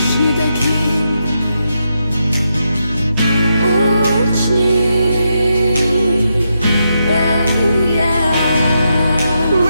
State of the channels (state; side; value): inverted; both; correlation -0.84